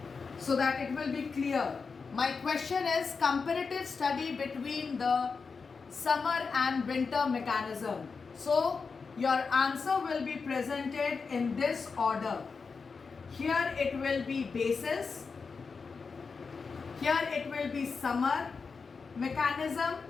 so that it will be clear. My question is comparative study between the summer and winter mechanism. So your answer will be presented in this order. Here it will be basis, here it will be summer mechanism,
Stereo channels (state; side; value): quieter; right; 5.0 dB